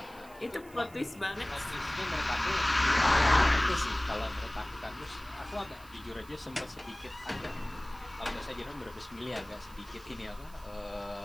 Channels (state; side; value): noise; right; hiss, 24 dB below the sound